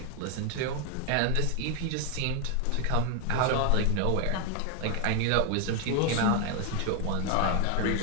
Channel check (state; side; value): different; both; correlation 0.00